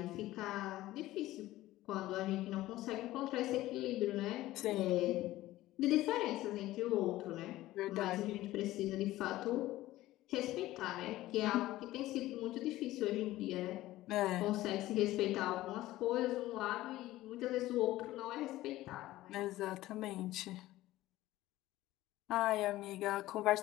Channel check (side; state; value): right; quieter; 16.2 dB